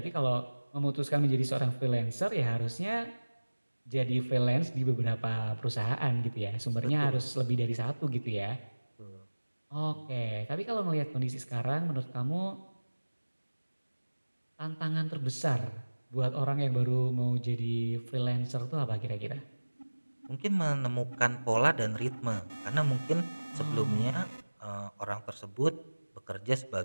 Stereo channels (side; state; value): both; inverted; correlation -1.00